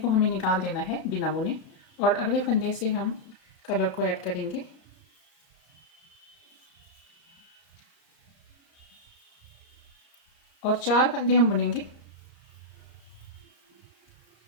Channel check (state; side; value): late; right; 33 ms